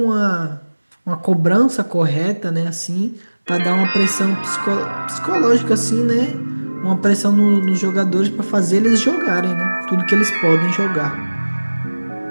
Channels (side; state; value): both; inverted; correlation -1.00